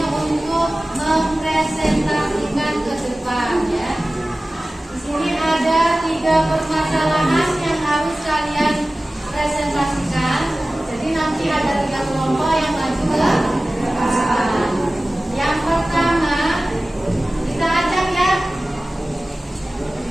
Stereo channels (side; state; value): both; normal; correlation 0.97